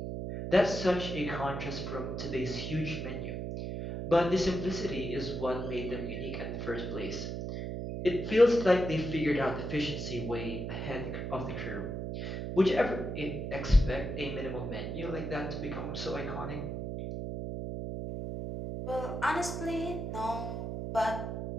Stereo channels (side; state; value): right; noise; hum, 4 dB below the sound